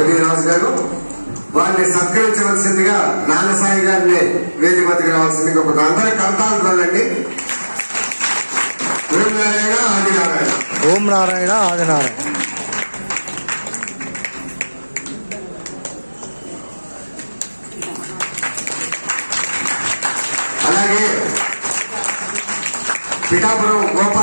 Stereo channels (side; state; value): both; inverted; correlation -1.00